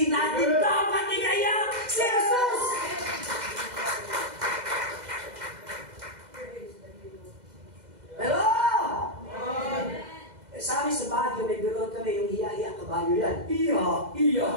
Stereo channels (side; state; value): left; late; 2.0 ms